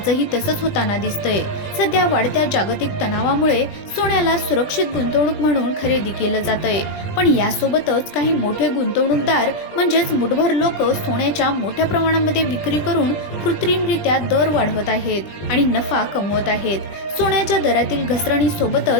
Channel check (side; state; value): right; late; 20 ms